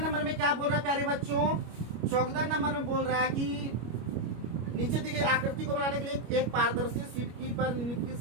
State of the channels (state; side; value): late; left; 25 ms